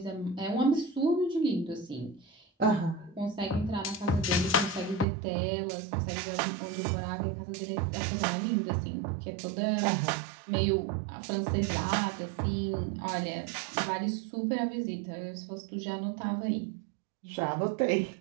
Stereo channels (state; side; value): drops out; left; at 5.1 s